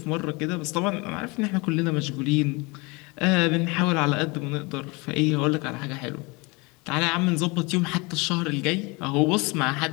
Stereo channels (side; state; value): right; quieter; 26.9 dB